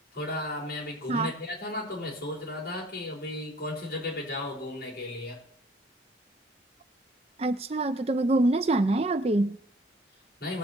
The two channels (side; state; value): both; normal; correlation 0.55